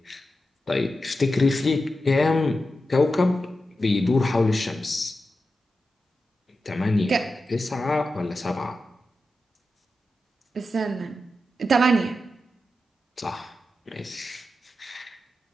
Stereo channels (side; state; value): both; normal; correlation 0.90